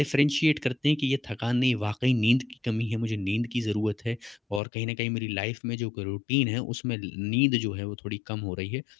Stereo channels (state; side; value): drops out; right; at 4.6 s